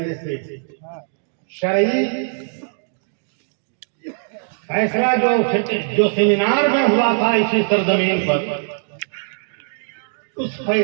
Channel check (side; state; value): left; silent; digital silence